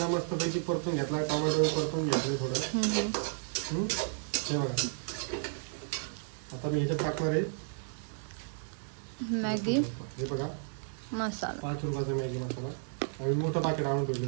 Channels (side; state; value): left; silent; 56 dB below the other